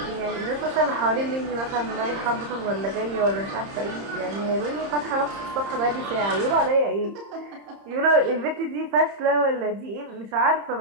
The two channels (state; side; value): late; left; 30 ms